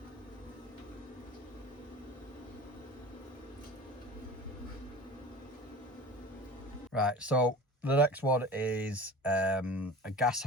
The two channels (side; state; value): both; normal; correlation 0.37